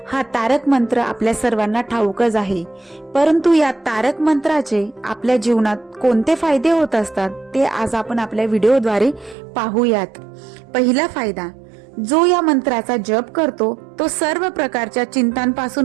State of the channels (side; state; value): left; drops out; at 9.3 s